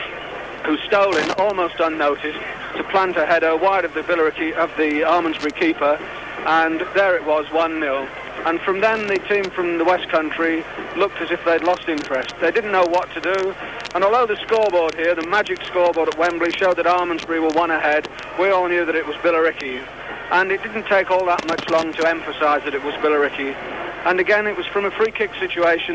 who stole in almost unnoticed to plant a header wide of the Almondsbury keeper, and there it was, 1-0. And from then, the team from the West Country looked as if they'd lost interest. They didn't know what to do, and although the scoreboard here, the magic scoreboard at Wembley, showed that Almondsbury were 1 ahead, we all knew that it was Billericay. And it didn't take all that much long to emphasise that it was Billericay. And again, it was from a free kick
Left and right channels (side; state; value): both; identical; correlation 1.00